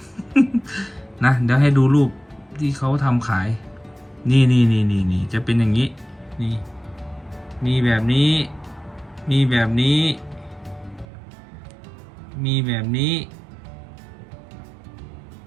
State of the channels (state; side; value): drops out; left; at 11.1 s